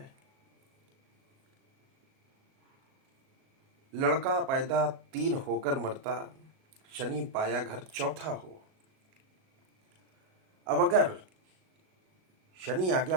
लड़का पैदा 3 होकर मरता, शनि पाया घर चौथा हो। अब अगर शनि आ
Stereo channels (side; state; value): left; late; 37 ms